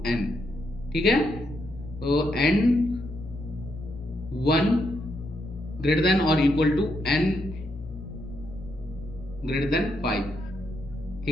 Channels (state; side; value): noise; right; rumble, 22 dB below the sound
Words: n, ठीक है। तो n 1 ग्रेटर देन और equal to n greater than 5,